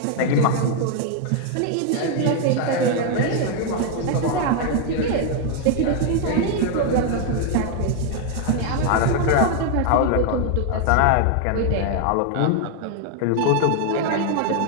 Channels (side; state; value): both; different; correlation 0.00